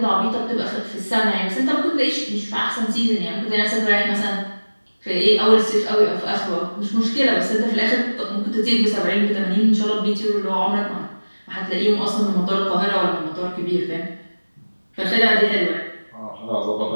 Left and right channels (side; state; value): both; inverted; correlation -1.00